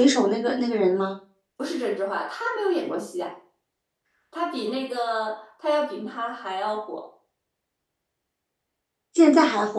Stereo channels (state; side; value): identical; both; correlation 1.00